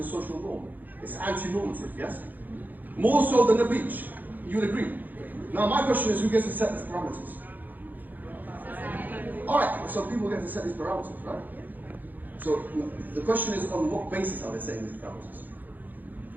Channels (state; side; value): late; left; 0.084 ms